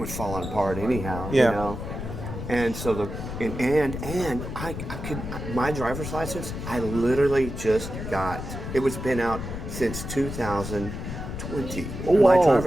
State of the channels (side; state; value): left; noise; rumble, 7 dB below the sound